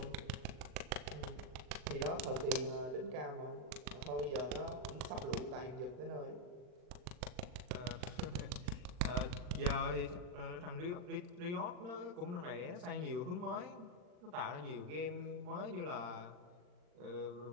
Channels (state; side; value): late; left; 39 ms